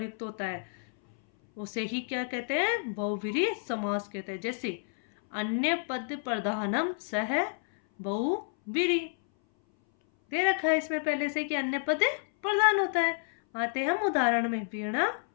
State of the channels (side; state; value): right; silent; 58 dB below the other